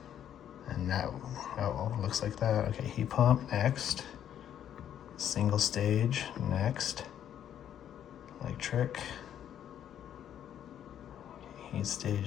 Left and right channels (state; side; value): quieter; right; 10.1 dB